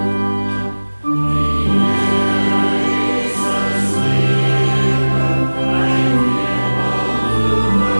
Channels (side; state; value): both; inverted; correlation -1.00